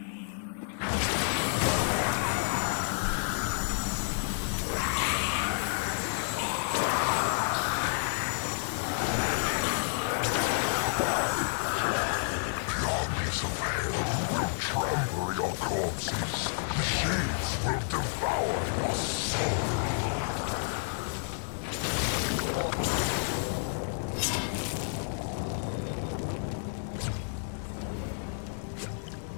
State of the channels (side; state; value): right; silent; 58 dB below the other